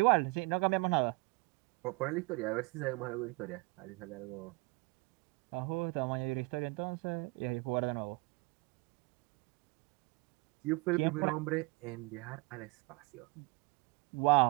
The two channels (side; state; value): left; quieter; 26.4 dB